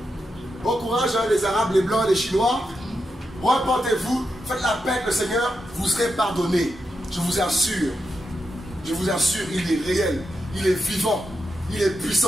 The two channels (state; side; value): normal; both; correlation 0.86